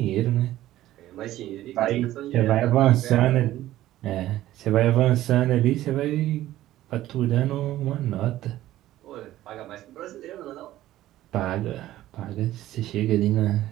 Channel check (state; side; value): quieter; left; 14.5 dB